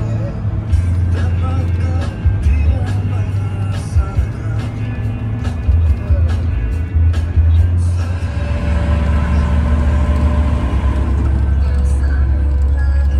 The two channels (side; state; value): both; identical; correlation 1.00